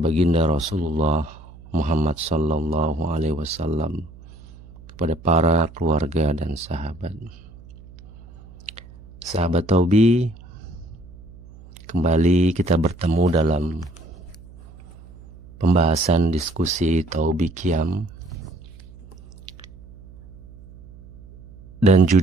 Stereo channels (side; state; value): right; noise; hum, 20 dB below the sound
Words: Rasulullah Muhammad sallallahu alaihi wasallam, kepada para keluarga dan sahabat. Sahabat Taubi, kembali kita bertemu dalam pembahasan diskusi Taubi Qiyam. Dan